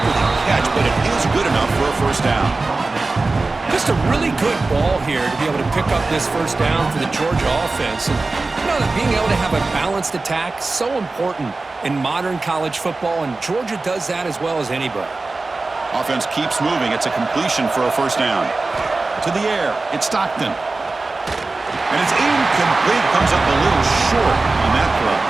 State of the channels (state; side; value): quieter; left; 3.5 dB